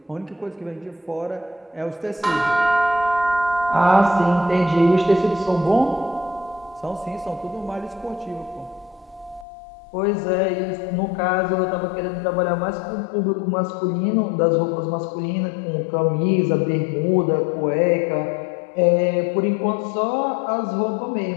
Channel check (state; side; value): drops out; right; at 9.5 s